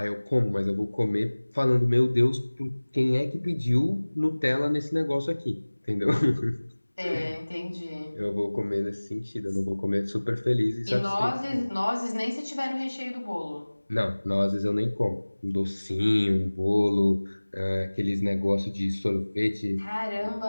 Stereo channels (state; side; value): inverted; both; correlation -1.00